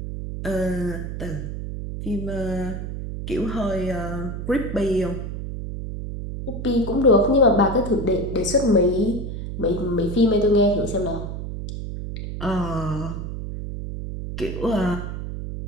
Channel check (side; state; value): right; noise; hum, 6 dB below the sound